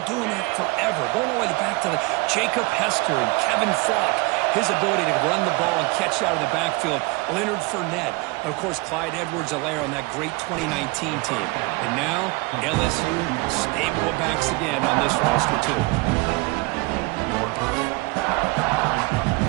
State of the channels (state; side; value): quieter; left; 25.0 dB